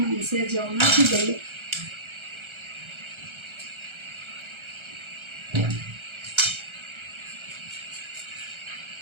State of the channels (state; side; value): late; left; 1.3 ms